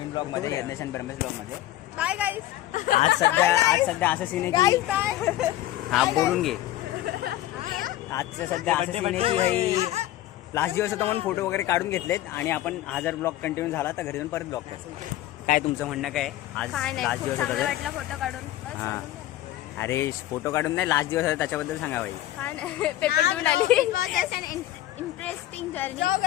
ब्लॉग मध्ये, यज्ञेश आणि ब्रह्मेश ब्लॉग मध्ये. Bye guys. आज सध्या असं सीन आहे की हा बोलून घे. आजचं सध्या असं सीन आहे की भाई लास्ट दिवस होता म्हणून फोटो वगैरे काढून घेतलेत आणि आपण हा जर ब्लॉग कंटिन्यू झाला तर घरी जाऊन परत ब्लॉग करतो. काय तुमचं म्हणणं काय? आज लास्ट दिवस होता तर फोटो काढून. हा अरे फोटो काढून नाही, लास्ट दिवस होता त्याच्याबद्दल सांगा भाई. पेपर देऊन आली. Interesting journey.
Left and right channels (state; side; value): quieter; right; 14.5 dB